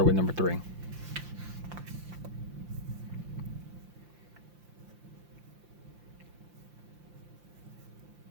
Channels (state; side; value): late; left; 5.8 ms